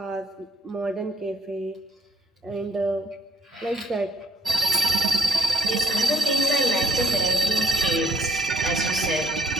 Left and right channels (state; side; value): normal; both; correlation 0.68